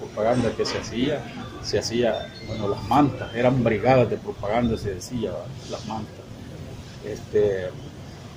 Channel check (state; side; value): identical; both; correlation 1.00